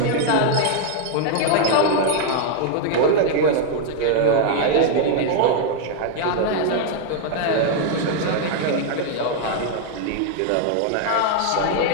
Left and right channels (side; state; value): both; different; correlation 0.00